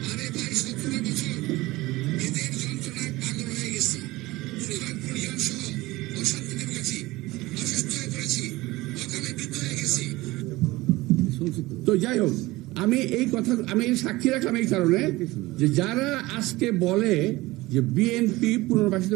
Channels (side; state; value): left; quieter; 19.8 dB